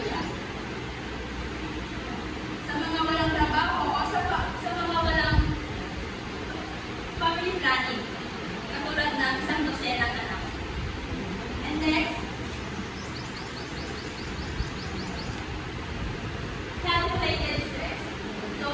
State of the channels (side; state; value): both; identical; correlation 1.00